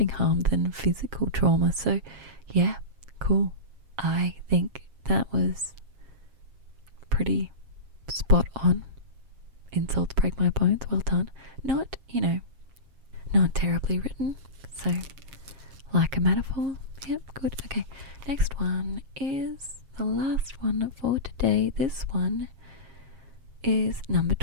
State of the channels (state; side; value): late; left; 7.4 ms